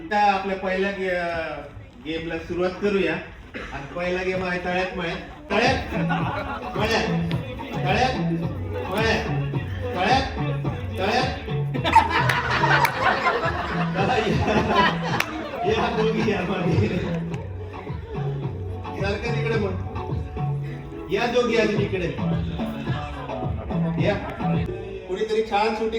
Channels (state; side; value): identical; both; correlation 1.00